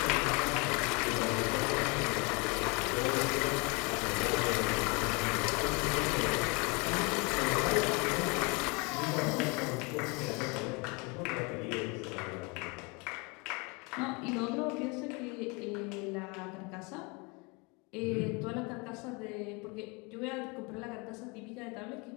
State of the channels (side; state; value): right; quieter; 29.5 dB